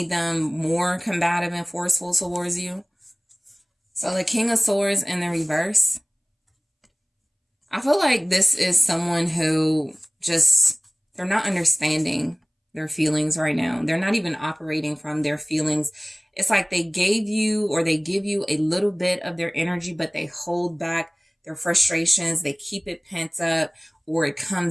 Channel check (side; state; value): both; identical; correlation 1.00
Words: them more combative and forceful towards you. So the King of Swords in the reverse. I feel like this is someone who they're not understanding their feelings right now. They're not even operating from their feelings. It's like they give you a little bit of their energy, but they hold back their frustrations. They keep it pent up, or it